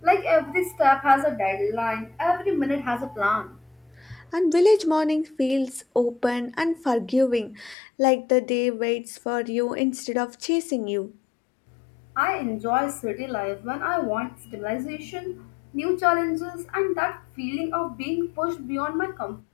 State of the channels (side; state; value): right; drops out; at 7.8 s